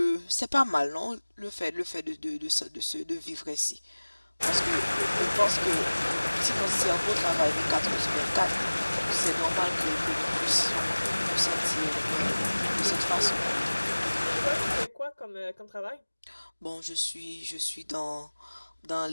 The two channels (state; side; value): inverted; both; correlation -1.00